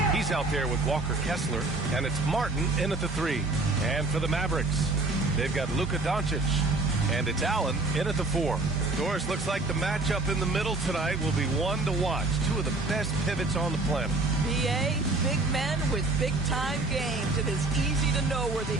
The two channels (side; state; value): left; quieter; 3.1 dB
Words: He's out there with Walker Kessler, and it's Martin in at the 3. And for the Mavericks, they've got Luka Doncic, and it's Allen in at the 4. Doris, looks like the matchup in the middle tonight will be one to watch. Two of the best pivots on the planet. BA, big men with big-time games. It is easy to know where the